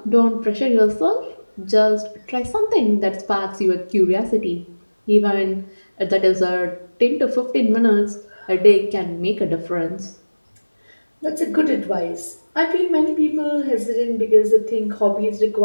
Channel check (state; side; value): inverted; both; correlation -1.00